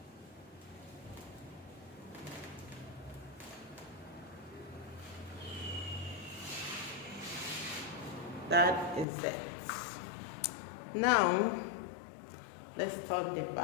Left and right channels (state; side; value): drops out; right; at 9.1 s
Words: That is it. Now let's start the